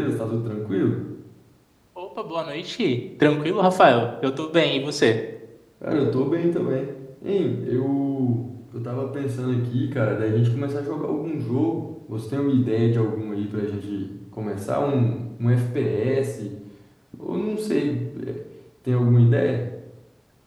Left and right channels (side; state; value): both; identical; correlation 1.00